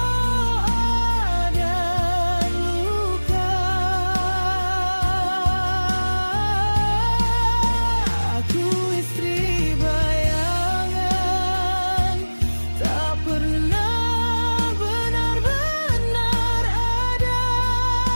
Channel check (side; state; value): both; inverted; correlation -1.00